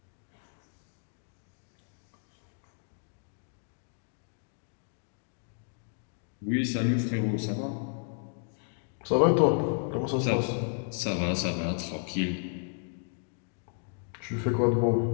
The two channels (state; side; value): silent; right; 56 dB below the other